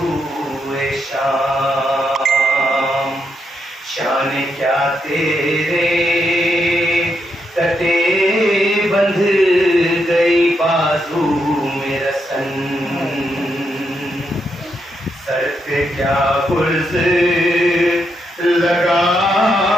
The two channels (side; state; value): both; normal; correlation 0.81